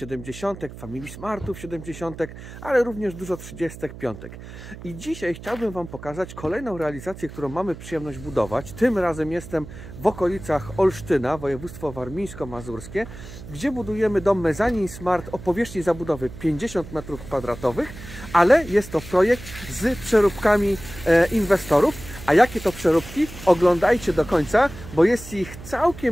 Family Smartów 70, ale również dużo 35. I dzisiaj chciałbym Wam pokazać kolejną realizację, którą mamy przyjemność budować. Tym razem jestem w okolicach Olsztyna, województwo warmińsko-mazurskie, gdzie budujemy dom mezanin Smart o powierzchni zabudowy 50 m2, ale jest to projekt z przeróbkami inwestorów. A jakie to przeróbki? Oglądajcie do końca, bo jest ich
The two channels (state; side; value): noise; right; hum, 14 dB below the sound